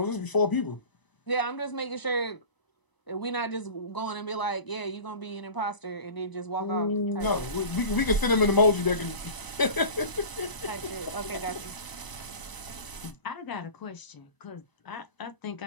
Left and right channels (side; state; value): right; late; 1.0 ms